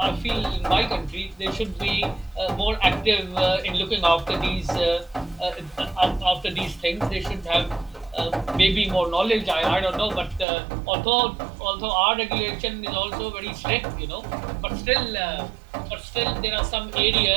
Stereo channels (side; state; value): left; drops out; at 10.5 s